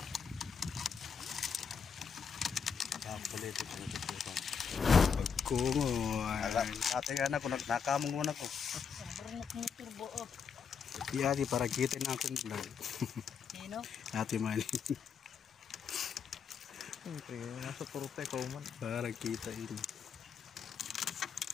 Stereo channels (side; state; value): right; quieter; 6.5 dB